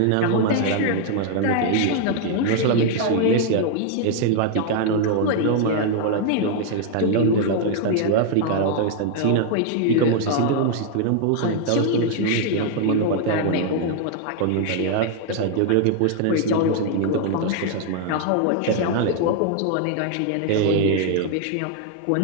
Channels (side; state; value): both; different; correlation 0.00